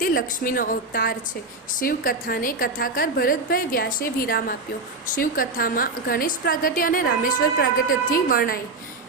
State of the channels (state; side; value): quieter; left; 3.5 dB